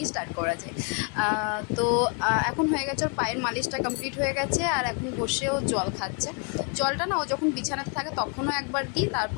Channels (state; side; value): quieter; right; 36.9 dB